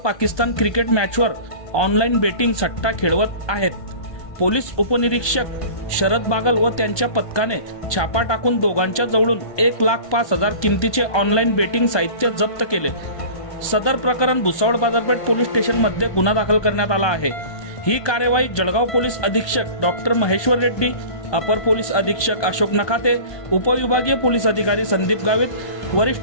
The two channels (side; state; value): right; late; 1.2 ms